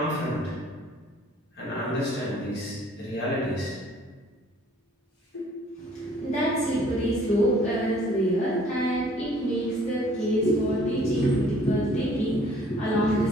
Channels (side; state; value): both; normal; correlation 0.57